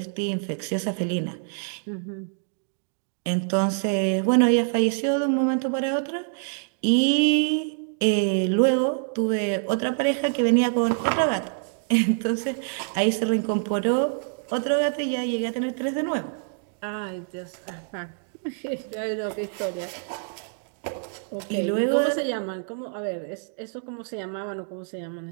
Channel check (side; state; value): left; silent; digital silence